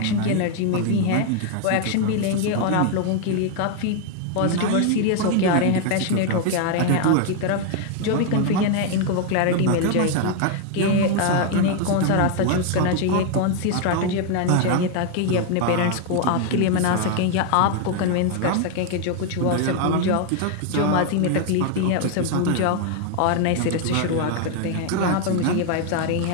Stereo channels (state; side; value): different; both; correlation 0.00